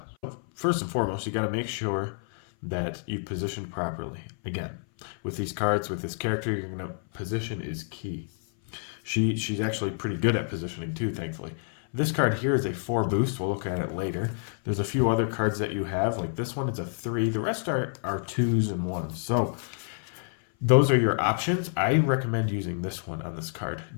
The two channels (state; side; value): silent; right; 57 dB below the other